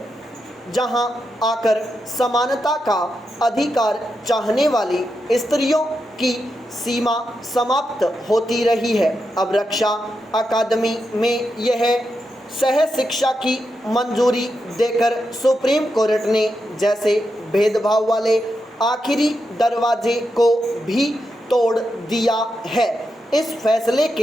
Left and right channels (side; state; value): both; normal; correlation 0.86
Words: जहां आकर समानता का अधिकार चाहने वाली स्त्रियों की सीमा समाप्त होती रही है। अब रक्षा अकादमी में यह सह शिक्षा की मंजूरी देकर सुप्रीम कोर्ट ने जैसे भेदभाव वाले आखिरी दरवाजे को भी तोड़ दिया है। इस फैसले